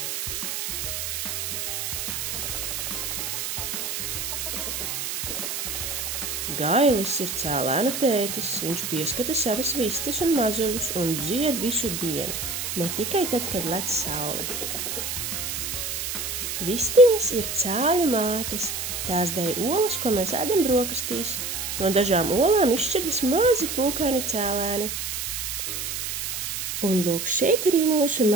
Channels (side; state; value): right; noise; hiss, 3 dB below the sound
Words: Gailis ir cēlēna tētis, viņš pieskata savas vistas un mazuļus un dzied visu dienu, ne tikai tad, kad lec saule. Vistiņas ir cēļu mātes, tās dēj olas, ko mēs ēdam brokastīs. No dažām olām izšķiras mazi pūkaini cēlēni. Un lūk, šeit arī mūsu